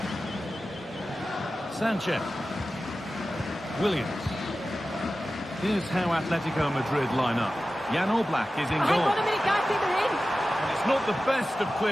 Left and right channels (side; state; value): both; normal; correlation 0.95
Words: Sanchez. Williams. Here's how Atletico Madrid line up. Jan Oblak is in goal. Hang on a minute, guys, they're in. And it's not the best of